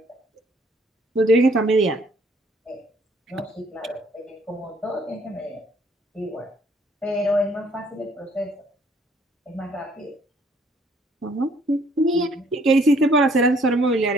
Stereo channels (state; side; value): normal; both; correlation 0.63